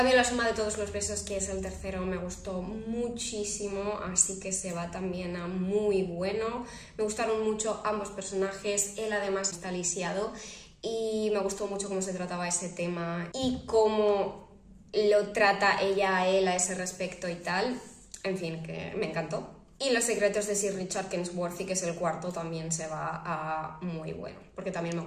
La suma de todos los besos, que es el tercero, me gustó muchísimo, así que se va también a muy bueno. Me gustaron mucho ambos personajes, él además está lisiado y me gustó mucho cómo se trataba ese tema y cómo lo trata ella a él a ese respecto y tal. En fin, que me encantó. Y Los secretos de Sir Richard Kensworthy, que es el cuarto, también se va a muy bueno, porque también me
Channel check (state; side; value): identical; both; correlation 1.00